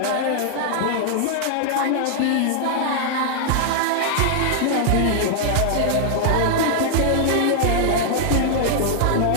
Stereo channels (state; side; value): different; both; correlation -0.01